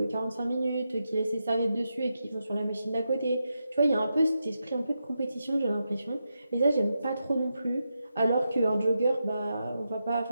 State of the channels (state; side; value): inverted; both; correlation -0.87